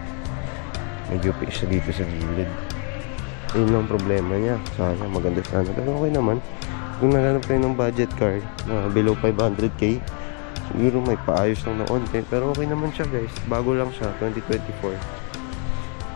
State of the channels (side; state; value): right; quieter; 39.3 dB